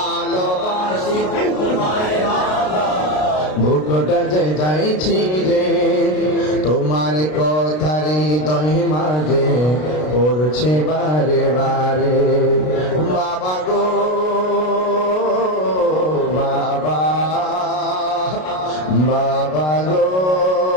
বুকটা যে যাইছি রে, তোমার কথার হৃদয় মাঝে পড়ছে বারে বারে। বাবা গো বাবা, বাবা গো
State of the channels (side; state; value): right; late; 33 ms